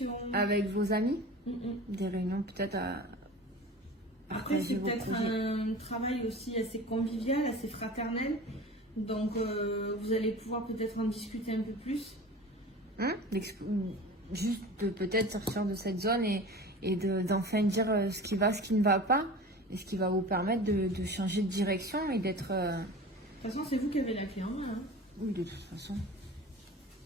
Avec vos amis. Des réunions peut-être Après, c'est peut-être un travail aussi assez convivial, assez fraternel. Donc, vous allez pouvoir peut-être en discuter un peu plus. Juste de peut-être sortir de cette zone et d'enfin dire ce qui va, ce qui ne va pas. Et ce qui va vous permettre de changer de direction et d'être... De toute façon, c'est vous qui avez la clé en main. Oui, de toute façon.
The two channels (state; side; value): normal; both; correlation 0.36